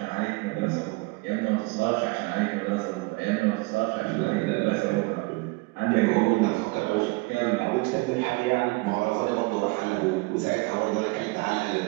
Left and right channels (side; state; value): left; quieter; 25.3 dB